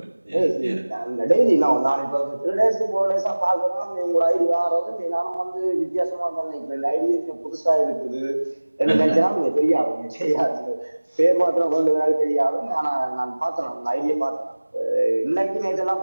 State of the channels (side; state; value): both; inverted; correlation -1.00